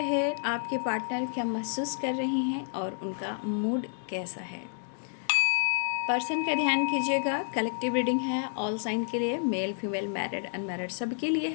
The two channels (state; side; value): silent; right; digital silence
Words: आपके पार्टनर क्या महसूस कर रही हैं और उनका मूड कैसा है। पर्सन का ध्यान कीजिएगा। कलेक्टिव रीडिंग है ऑल साइन के लिए, मेल फीमेल मैरिड अनमैरिड सबके लिए